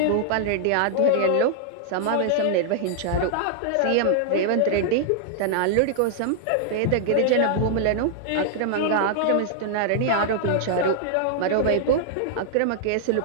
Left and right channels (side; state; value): both; different; correlation -0.01